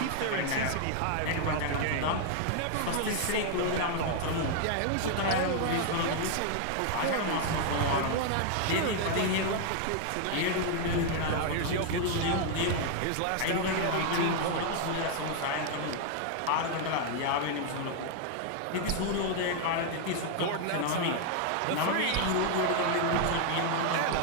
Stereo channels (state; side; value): different; both; correlation 0.00